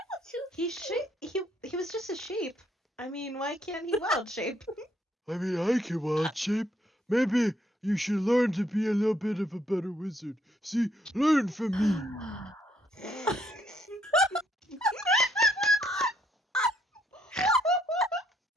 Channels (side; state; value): both; normal; correlation 0.71